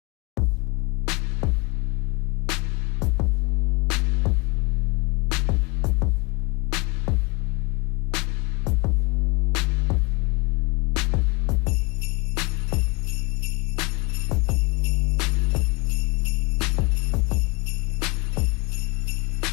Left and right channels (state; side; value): quieter; right; 27.6 dB